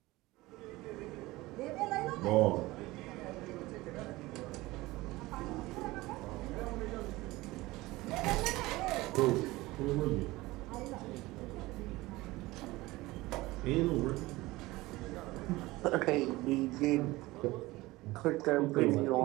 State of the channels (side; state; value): left; quieter; 19.7 dB